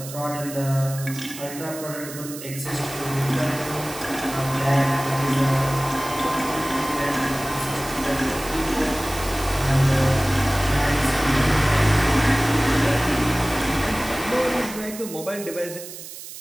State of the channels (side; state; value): right; noise; hiss, 12 dB below the sound